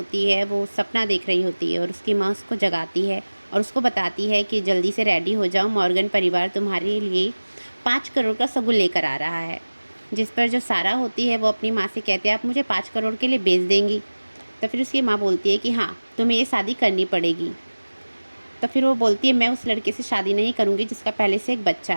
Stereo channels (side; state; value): both; inverted; correlation -1.00